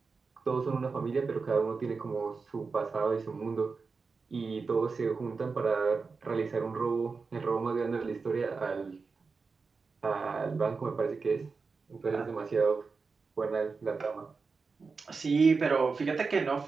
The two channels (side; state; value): left; quieter; 4.6 dB